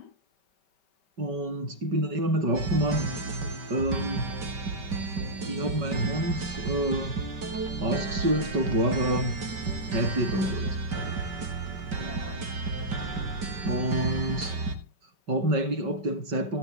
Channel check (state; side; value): late; left; 5.2 ms